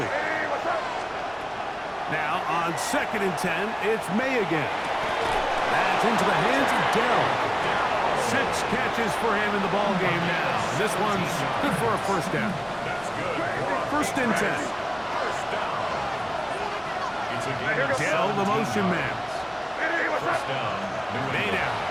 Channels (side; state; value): both; identical; correlation 1.00